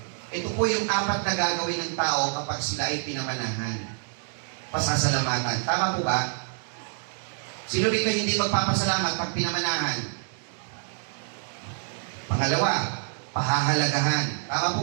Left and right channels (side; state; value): left; silent; 60 dB below the other